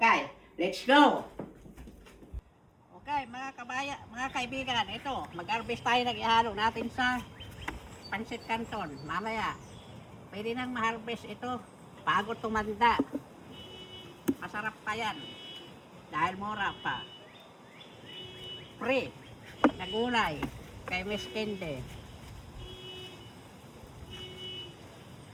let's go! Okay, mga kaibigan, ito, mag-harvest tayo ng ihalo natin sa Pancit Canton. Mamaya, pwede nang ma-harvest ito bago tumanda. Masarap pa yan. Dahil mura pa. Free na gulay kay Miss Kende.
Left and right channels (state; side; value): identical; both; correlation 1.00